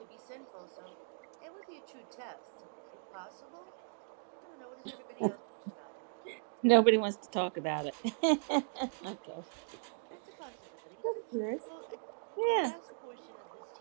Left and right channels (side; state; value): left; silent; digital silence